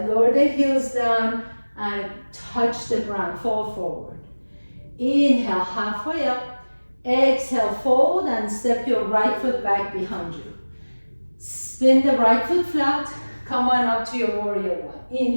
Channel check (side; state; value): both; inverted; correlation -1.00